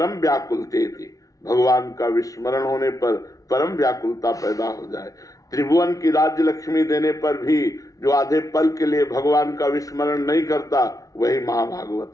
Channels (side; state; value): right; late; 0.17 ms